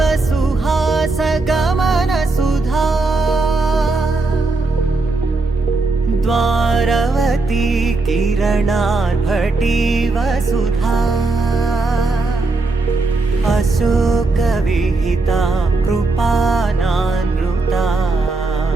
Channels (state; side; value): quieter; left; 3.4 dB